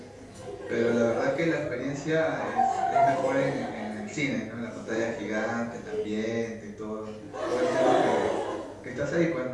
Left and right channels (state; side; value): identical; both; correlation 1.00